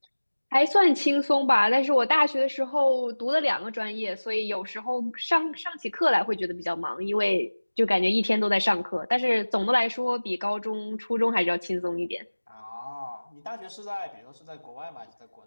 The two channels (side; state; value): both; inverted; correlation -1.00